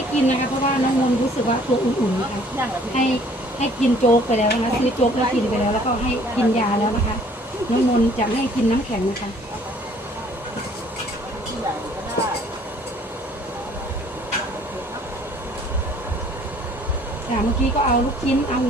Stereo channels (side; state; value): both; normal; correlation 0.57